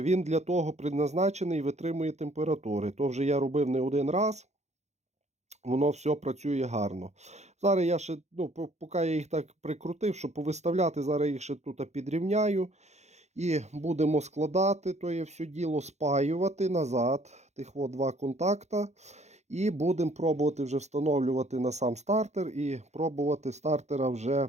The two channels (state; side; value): late; left; 0.33 ms